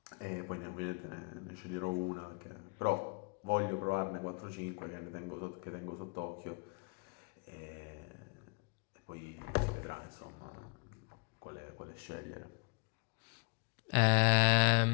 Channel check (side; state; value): right; quieter; 34.7 dB